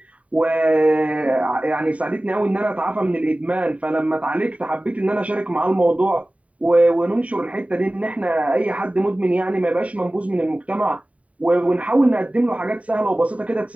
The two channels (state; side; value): late; left; 0.067 ms